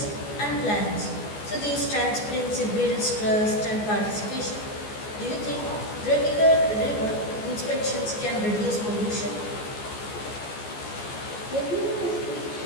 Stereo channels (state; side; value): late; right; 14 ms